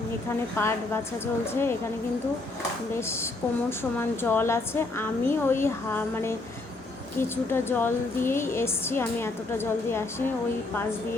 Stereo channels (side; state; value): right; quieter; 3.1 dB